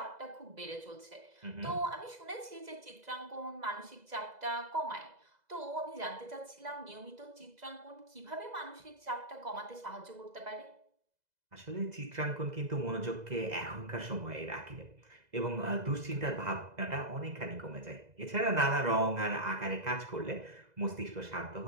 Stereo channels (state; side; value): late; left; 2.0 ms